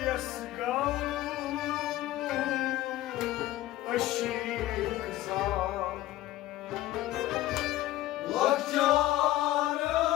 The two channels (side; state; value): right; quieter; 15.3 dB